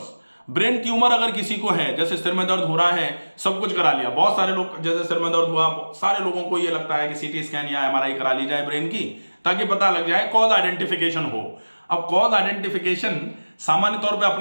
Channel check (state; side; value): inverted; both; correlation -1.00